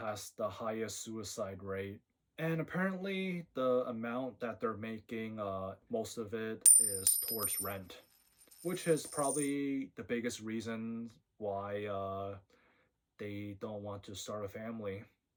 the highest suicide rate. And apparently, the amount that they're making, most of it is towards rent, which is probably the biggest reason why they don't want to start a family.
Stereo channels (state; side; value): identical; both; correlation 1.00